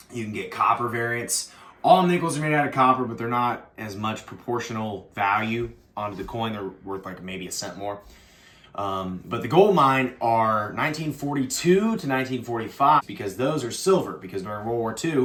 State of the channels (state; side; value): identical; both; correlation 1.00